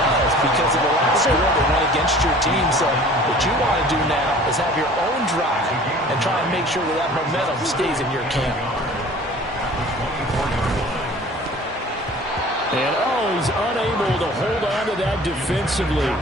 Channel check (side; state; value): both; normal; correlation 0.46